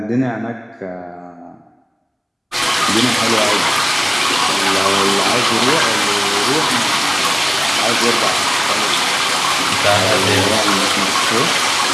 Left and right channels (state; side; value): identical; both; correlation 1.00